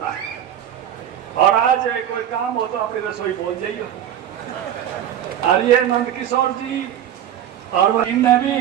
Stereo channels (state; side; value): quieter; left; 10.6 dB